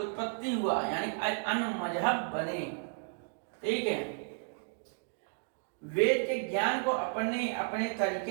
हुआ, यानी अन्य मजहब बने। ठीक है, वेद के ज्ञान को अपने अपने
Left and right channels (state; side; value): silent; left; 56 dB below the other